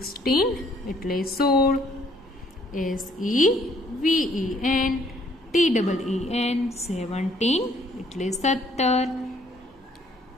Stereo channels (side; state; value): both; normal; correlation 0.63